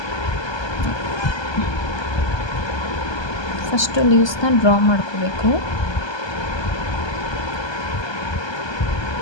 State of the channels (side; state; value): right; late; 1.2 ms